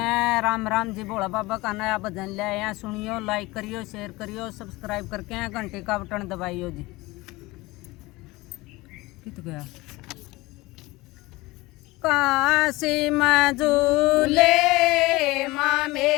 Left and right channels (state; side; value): quieter; right; 21.2 dB